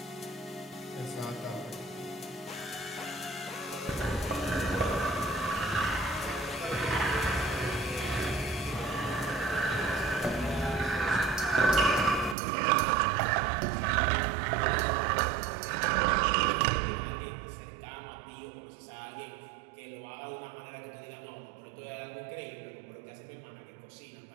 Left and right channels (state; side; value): drops out; left; at 12.4 s